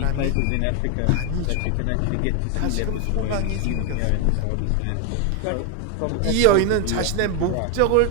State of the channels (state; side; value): different; both; correlation 0.01